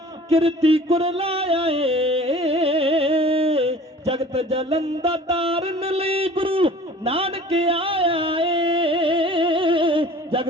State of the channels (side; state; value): both; normal; correlation 0.46